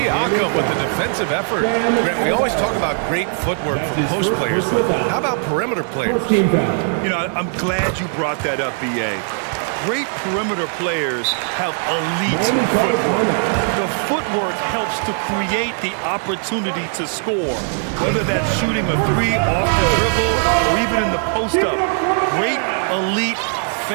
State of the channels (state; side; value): silent; left; 55 dB below the other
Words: with the defensive effort. Grant, we always talk about great footwork from post players, but how about perimeter players? You know, I'm glad you brought that up, B.A. Great perimeter players have elite footwork. The footwork helps to create the opportunity to score, whether that's shooting a 3 off the dribble or even in the post-up. Great, elite,